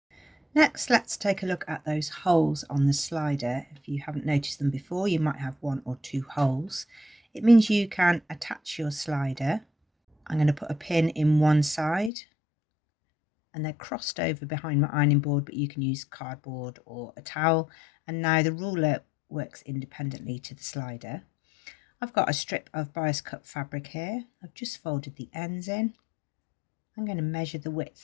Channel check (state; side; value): drops out; right; at 12.1 s